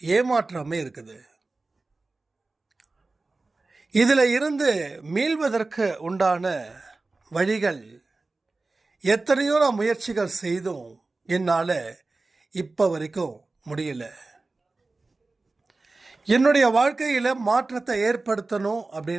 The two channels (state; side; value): quieter; left; 3.4 dB